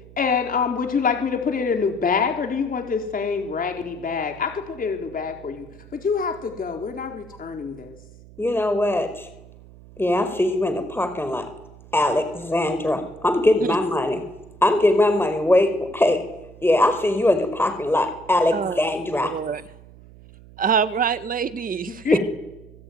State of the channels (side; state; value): right; noise; hum, 21 dB below the sound